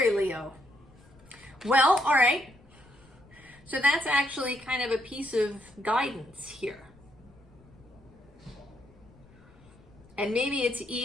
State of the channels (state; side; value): noise; left; rumble, 26 dB below the sound